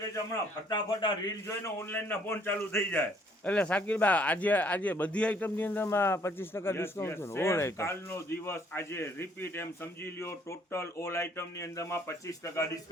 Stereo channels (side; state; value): both; normal; correlation 0.64